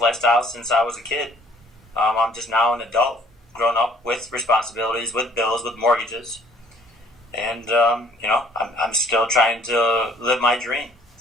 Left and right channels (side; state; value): both; normal; correlation 0.58